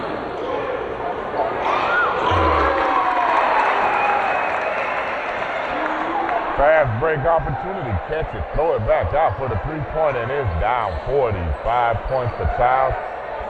Fast break opportunity, catch it, throw it back out for the three-pointer, and it's down 40. 5 points for Chiles,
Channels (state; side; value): identical; both; correlation 1.00